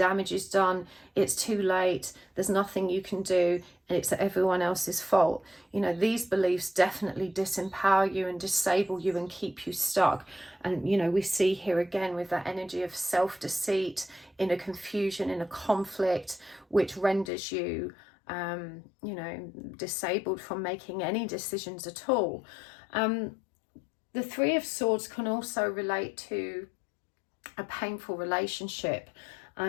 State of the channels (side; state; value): right; drops out; at 17.3 s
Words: is done, it's too late, there's nothing you can do, and it's everyone else's fault. You know, these beliefs definitely disempower you and disable you and keep you stuck. And, you know, we see here again with that energy of self-deceit, inner confusion, inner conflict, which renders you, you know, disabled from making any decisions at all. The Three of Swords can also relate to a painful relationship,